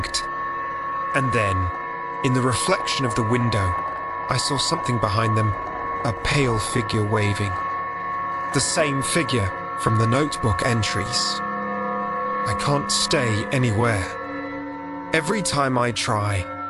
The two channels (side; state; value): both; identical; correlation 1.00